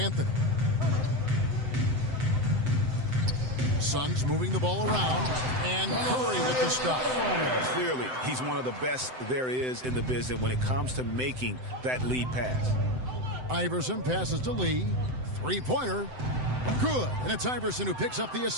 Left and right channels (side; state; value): left; late; 7.8 ms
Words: Suns moving the ball around. And Curry with the stop. Clearly, he's one of the best there is in the business when it comes to making that lead pass. Iverson passes to Lee. 3-pointer. Good. And it's Iverson who picks up the